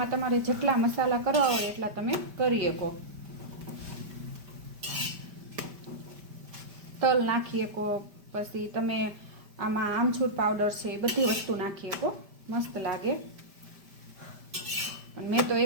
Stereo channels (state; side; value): late; left; 5.1 ms